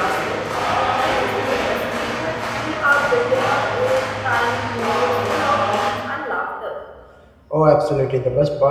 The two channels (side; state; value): both; identical; correlation 1.00